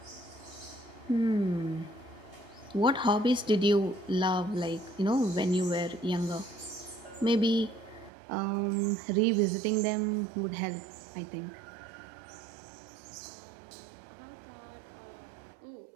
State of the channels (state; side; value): drops out; left; at 8.1 s